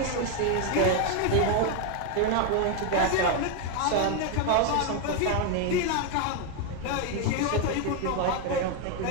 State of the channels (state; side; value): different; both; correlation 0.01